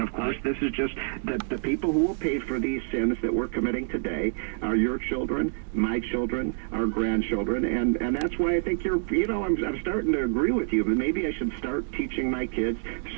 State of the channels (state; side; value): silent; left; 60 dB below the other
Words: of course, this is just the people who will pay for these sins that we're committing today are your children, my children, our grandchildren, and that's why I think I'm starting to agree with you. But maybe I should start teaching my kids